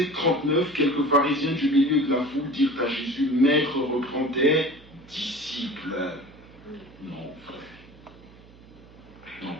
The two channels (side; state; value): right; noise; hum, 23 dB below the sound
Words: 39, quelques pharisiens du milieu de la foule dirent à Jésus, « Maître, reprends tes disciples. » Non, frère. Non,